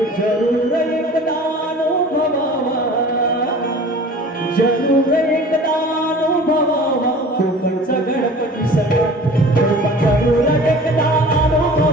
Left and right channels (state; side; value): normal; both; correlation 0.43